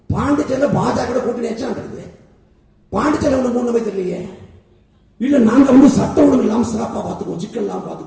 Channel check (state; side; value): identical; both; correlation 1.00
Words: பாண்டிச்சேரியில பாஜக கூட்டணி நடக்குது. பாண்டிச்சேரி ஒண்ணு மூணு நம்பர் தெரியலையே. இல்ல நாங்க சட்ட ஒழுங்கு இல்லாம சிறப்பா பாத்துக்குவோம், சிக்கல் இல்லாம